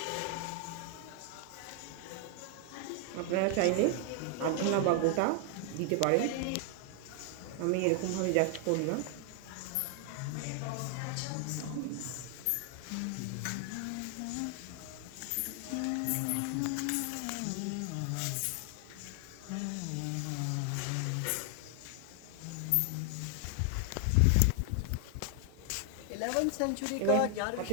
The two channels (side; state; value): both; different; correlation 0.00